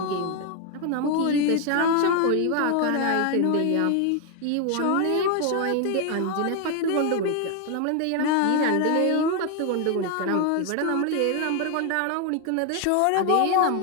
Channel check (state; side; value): different; both; correlation 0.01